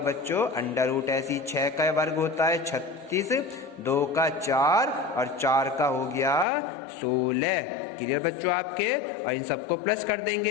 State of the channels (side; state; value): right; drops out; at 6.5 s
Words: अंडर रूट। ऐसी 6 का वर्ग होता है 36, 2 का 4 और 4 का हो गया 16। क्लियर बच्चों आपके। और इन सबको प्लस कर